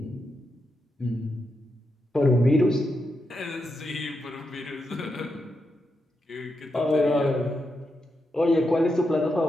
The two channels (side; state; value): both; normal; correlation 0.85